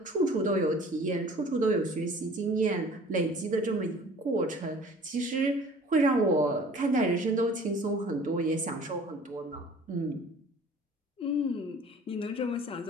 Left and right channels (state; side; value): normal; both; correlation 0.48